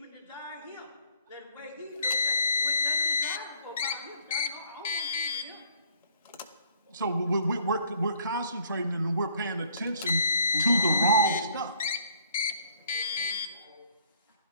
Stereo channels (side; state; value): both; inverted; correlation -0.60